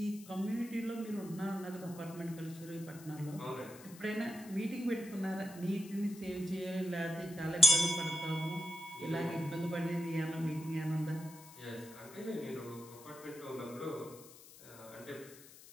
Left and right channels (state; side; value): noise; left; hiss, 19 dB below the sound